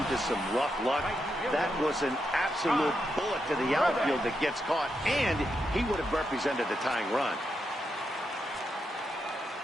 some rough luck. That was an absolute bullet to the outfield that gets caught, and he would have represented the tying run.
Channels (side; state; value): both; normal; correlation 0.84